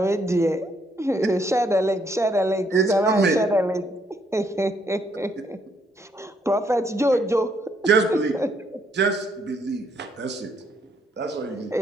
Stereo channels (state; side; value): normal; both; correlation 0.71